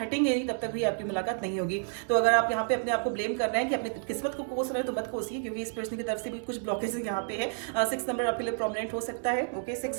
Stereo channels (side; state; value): left; silent; 58 dB below the other